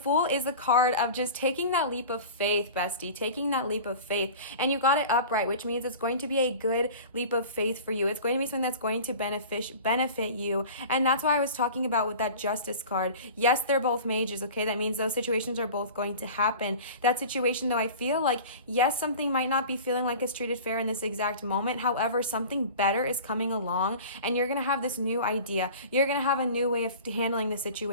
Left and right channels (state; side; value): inverted; both; correlation -0.38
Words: is the card of just taking that leap of faith, bestie, taking that leap of faith. And you got it upright, which means it's going to be a good leap of faith for you. It's going to be something that's going to benefit you. And that's why I was talking about with that Justice card. Yes, they're both mages, okay? That means those situations are both going to happen. That situation, though, I feel like, yes, something might not be feeling like it's treated fair in this exact moment. However, something better is coming along, and you're going to have this new idea. You're going to have a new way of handling the